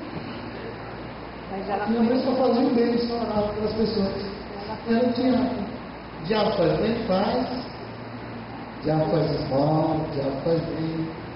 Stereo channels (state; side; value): identical; both; correlation 1.00